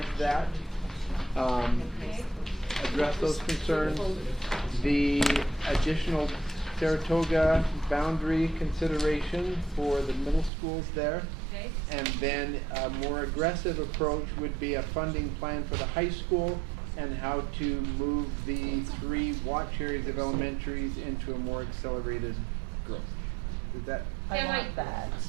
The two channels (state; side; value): drops out; left; at 10.5 s